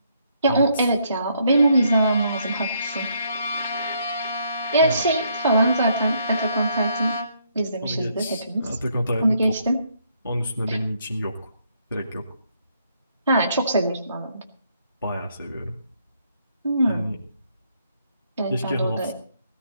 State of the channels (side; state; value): both; inverted; correlation -0.72